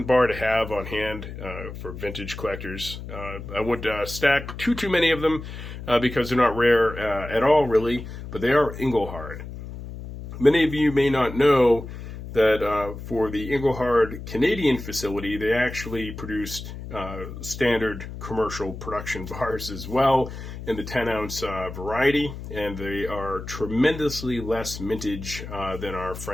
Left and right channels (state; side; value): noise; left; hum, 10 dB below the sound